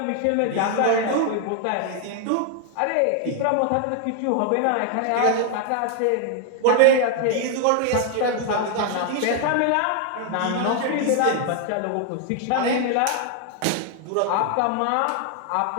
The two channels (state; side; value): different; both; correlation 0.00